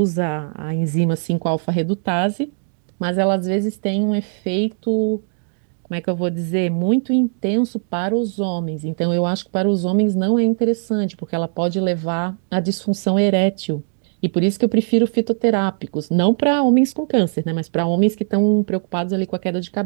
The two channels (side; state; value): left; silent; digital silence